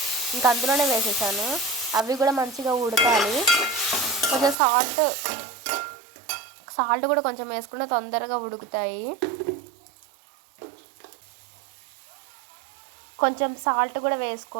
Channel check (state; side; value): drops out; left; at 4.5 s